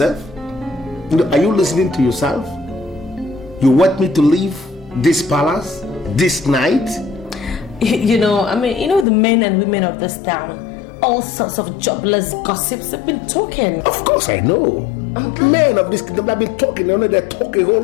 You know, are you listening to yourself? You want me to leave this palace this night? You know the men and women of this town, all sorts of jobless gossips have been talking. Of course I know. Men of this kingdom have been talking, they're talking a whole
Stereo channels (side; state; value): right; drops out; at 9.1 s